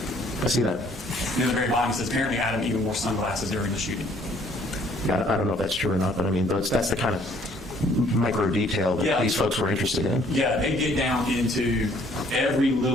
I see that. And at the very bottom, he says, apparently Adam even wore sunglasses during the shooting. Yeah, I don't know if that's true or not, but I mean, that's the kind of micro detail that these folks were interested in. Yeah, they get down into every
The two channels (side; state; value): both; normal; correlation 0.61